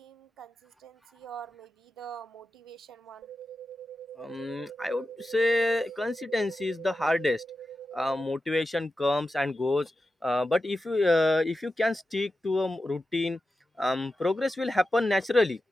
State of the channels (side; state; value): both; normal; correlation 0.92